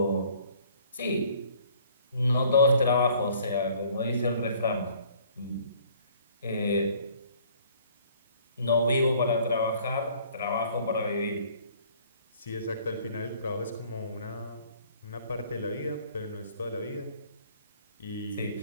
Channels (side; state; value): both; inverted; correlation -0.57